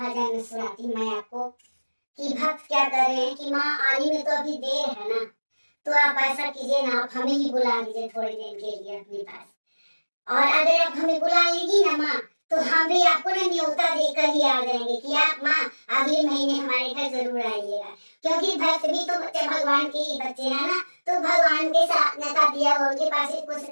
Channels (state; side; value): inverted; both; correlation -1.00